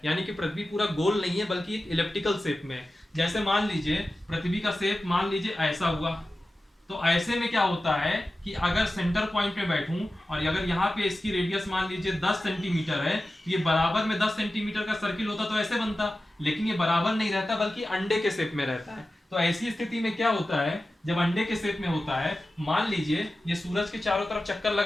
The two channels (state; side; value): normal; both; correlation 0.94